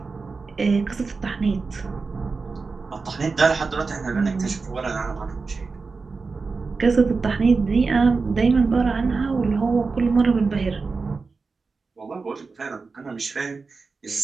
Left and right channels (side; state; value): left; quieter; 4.4 dB